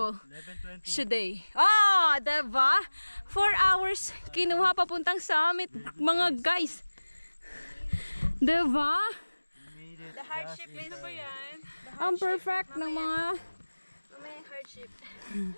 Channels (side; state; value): both; inverted; correlation -1.00